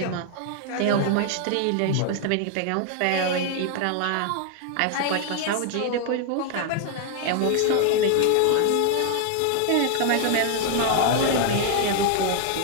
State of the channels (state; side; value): different; both; correlation 0.00